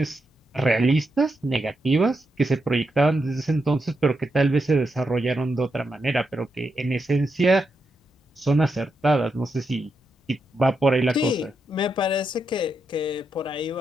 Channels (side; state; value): both; normal; correlation 0.84